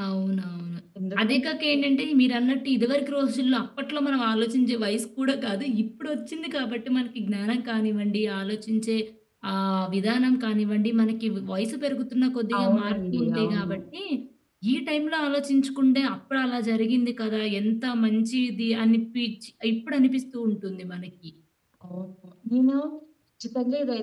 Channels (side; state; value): both; identical; correlation 1.00